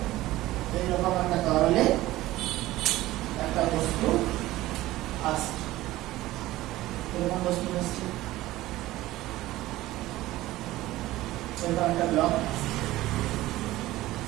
এইরকম একটা তরলে একটা বস্তু আসছে, এরকম বস্তু আসছে, এরকম একটা ব্লক।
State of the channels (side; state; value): left; quieter; 16.7 dB